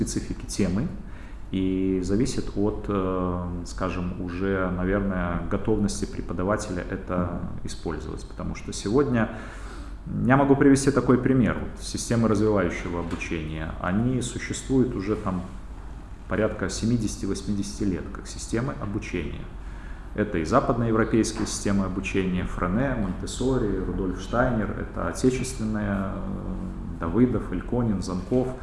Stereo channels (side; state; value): both; identical; correlation 1.00